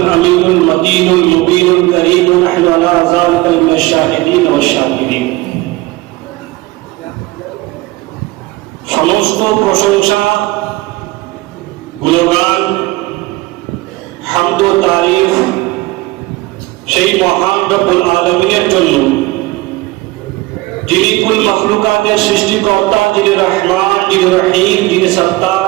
الأمين المتين المبين الكريم ونحن على ذلك من الشاهدين والشاكرين. সমস্ত প্রশংসা, গুণগান, হামদ ও তারিফ সেই মহান রব্বুল আলামিনের জন্য, যিনি কুল মাখলুকাতের সৃষ্টিকর্তা, যিনি রহমান, যিনি রহিম, যিনি সত্তার,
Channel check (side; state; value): left; quieter; 20.0 dB